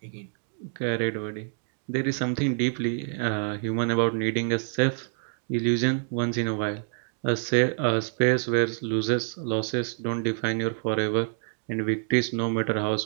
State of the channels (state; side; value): silent; left; digital silence